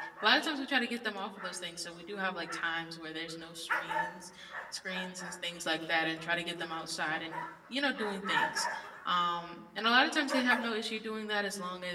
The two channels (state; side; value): identical; both; correlation 1.00